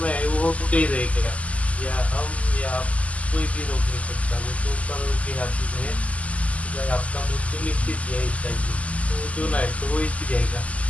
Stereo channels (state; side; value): late; right; 0.068 ms